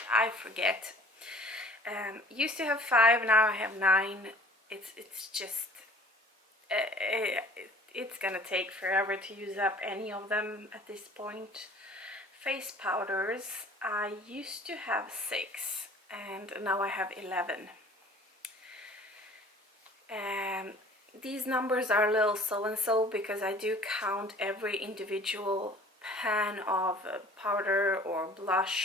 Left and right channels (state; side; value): normal; both; correlation 0.49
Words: forget. Used to have 5, now I have 9. It's just it's gonna take forever to use up any of them at this point. Face powders, I used to have 6 and now I have 11. These numbers are a little so-and-so because I do count every individual pan of powder or